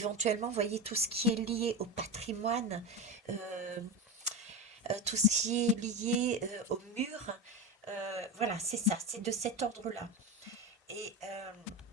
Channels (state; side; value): normal; both; correlation 0.21